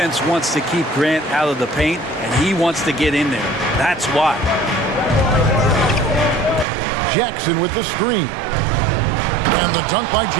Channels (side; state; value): left; drops out; at 6.7 s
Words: wants to keep Grant out of the paint, and he wants to get in there. That's why. Jackson with the screen. And the dunk by